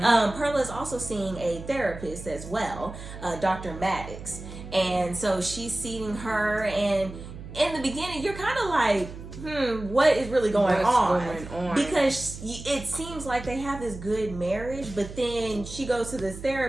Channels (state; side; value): noise; right; hum, 12 dB below the sound